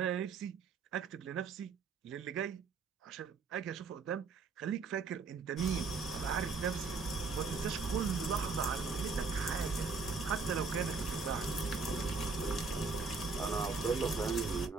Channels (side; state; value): left; quieter; 4.6 dB